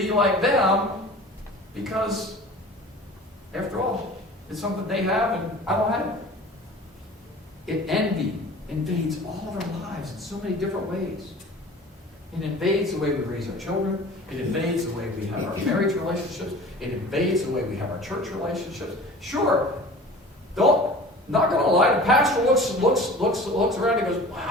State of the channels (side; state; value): both; normal; correlation 0.41